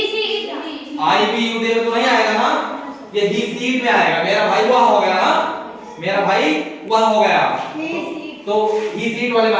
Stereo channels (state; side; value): identical; both; correlation 1.00